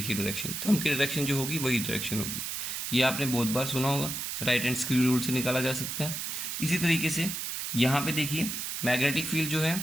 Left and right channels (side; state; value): right; noise; hiss, 4 dB below the sound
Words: डायरेक्शन, थंब की डायरेक्शन जो होगी वही डायरेक्शन होगी। ये आपने बहुत बार सुना होगा, राइट हैंड स्क्रू रूल से निकाला जा सकता है। इसी तरीके से यहाँ पे देखिए मैग्नेटिक फील्ड जो है